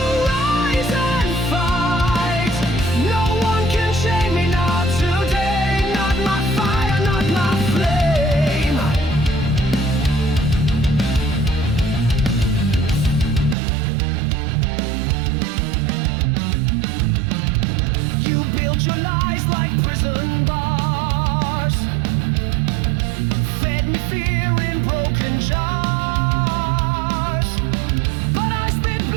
rise and fight. No one can chain me, not today. Not my fire, not my flame. You built your lies like prison bars, fed me fear in broken jars. But I spit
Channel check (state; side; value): drops out; left; at 13.6 s